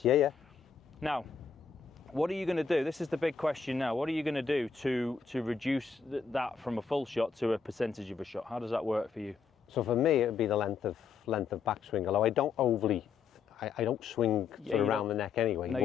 Yeah. Now, what are you going to do? This is the big question now. What are you going to do to reduce that from a full shot to a percentage of a shot? How does that work for you? So for me, it would be the length of backswing. Although I don't I don't swing around the neck anyway. No,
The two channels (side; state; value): right; quieter; 5.7 dB